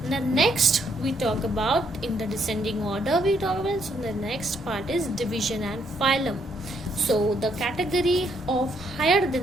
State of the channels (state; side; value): normal; both; correlation 0.72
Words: The next we talk about in the descending order we talk about. So the next part is division and phylum. So the category of higher